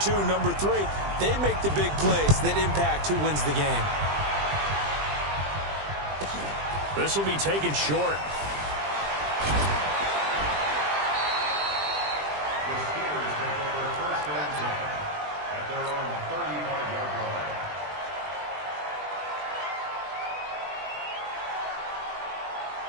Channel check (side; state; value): left; late; 20 ms